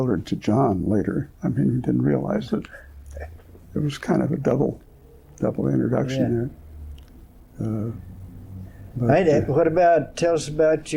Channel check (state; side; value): identical; both; correlation 1.00